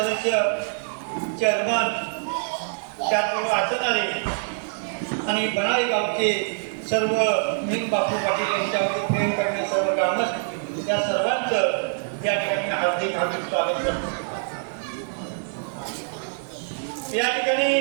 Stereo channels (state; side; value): silent; left; digital silence